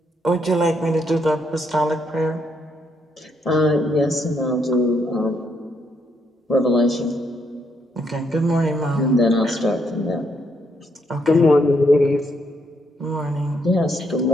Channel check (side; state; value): both; normal; correlation 0.75